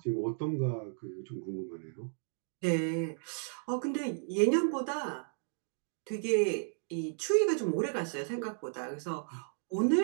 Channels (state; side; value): silent; left; digital silence